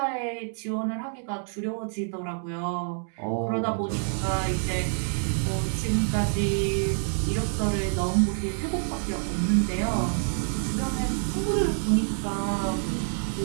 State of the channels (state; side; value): silent; left; 60 dB below the other